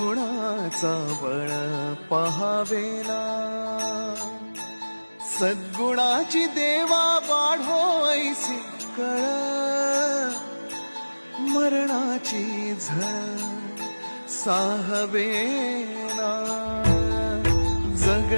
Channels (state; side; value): inverted; both; correlation -1.00